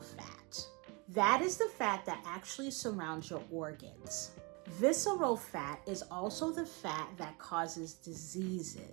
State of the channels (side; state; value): left; quieter; 29.0 dB